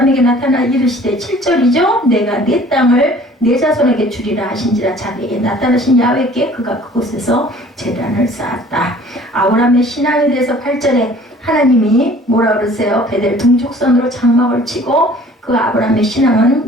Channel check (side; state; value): both; normal; correlation 0.51